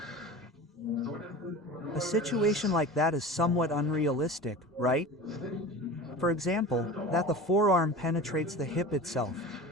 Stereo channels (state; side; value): normal; both; correlation 0.34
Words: A situation like that is somewhat unrealistic, right? For example, that the forearm penetrates the hip itself.